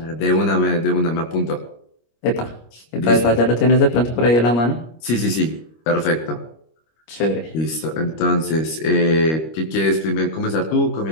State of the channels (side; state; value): right; late; 25 ms